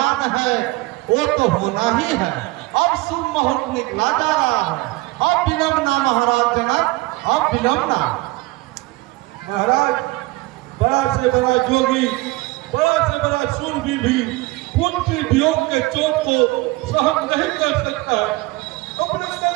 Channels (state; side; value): quieter; left; 21.2 dB